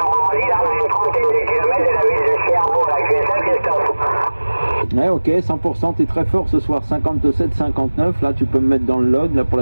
là, dans une trentaine de kilomètres de la ville de Cherbourg, la QSL Christophe. Ouais, ok, 100%, t'es très fort ce soir, 57-59, là tu peux me mettre dans le log, là pour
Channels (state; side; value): inverted; both; correlation -1.00